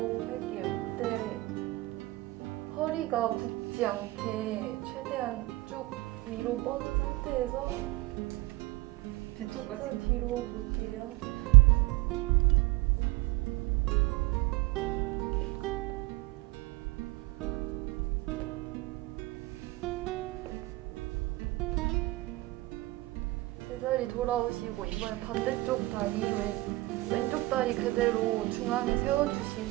할게요. 이때 허리가 굽지 않게 최대한 쭉 위로 뻗은 상태에서 뒤쪽까지. 시선 뒤로 볼게요. 제자리 돌아오시고 이번엔 반대쪽 다리 왼쪽 다리 그대로 중앙에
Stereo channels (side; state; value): left; quieter; 20.5 dB